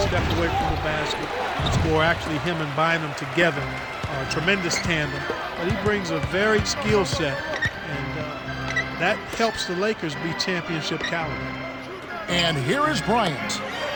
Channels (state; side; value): identical; both; correlation 1.00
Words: step away from the basket and score. Actually, him and Bynum together are a tremendous tandem. But he brings a varied skill set, and that helps the Lakers be championship caliber. And here is Bryant.